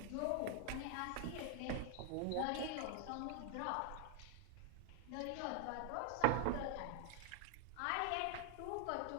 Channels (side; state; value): both; different; correlation 0.00